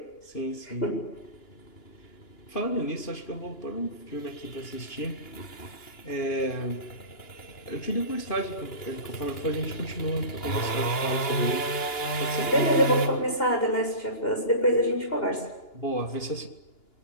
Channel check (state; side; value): late; right; 2.9 ms